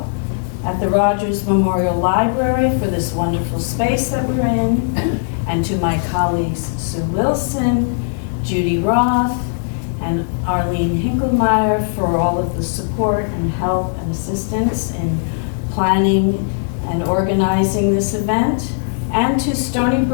at the Rogers Memorial Library for this wonderful space that we're in, and to my colleagues Sue Wilson, Judy Roth, and Arlene Hinkelmeyer for all of the support and help and assistance in planning and organizing this event, and to Stony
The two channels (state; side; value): silent; right; digital silence